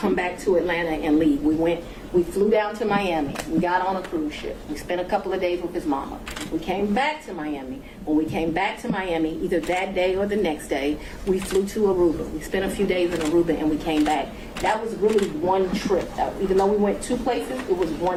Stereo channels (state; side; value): identical; both; correlation 1.00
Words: back to Atlanta and leave. We flew down to Miami. We got on a cruise ship. We spent a couple of days with his mama. We came back to Miami. When we came back to Miami, either that day or the next day, we flew to Aruba. We spent a few days in Aruba and we came back. That was really one trip. Even though we went two places, it was